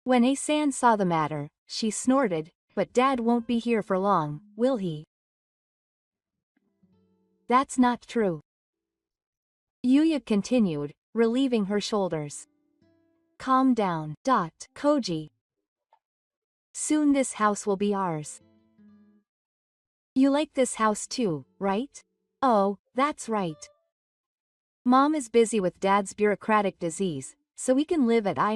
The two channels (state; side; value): identical; both; correlation 1.00